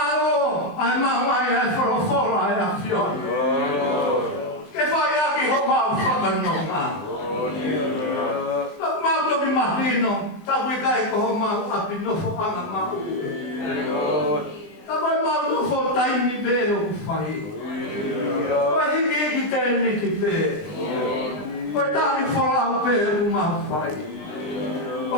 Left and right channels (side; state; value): right; late; 20 ms